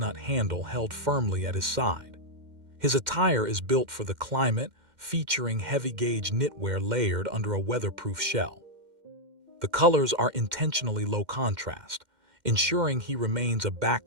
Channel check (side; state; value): left; late; 2.1 ms